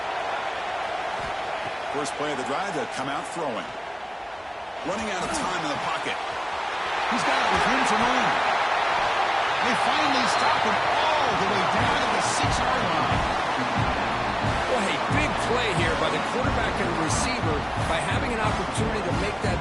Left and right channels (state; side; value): identical; both; correlation 1.00